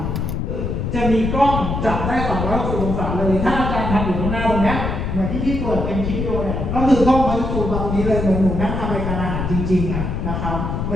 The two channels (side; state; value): left; noise; rumble, 2 dB below the sound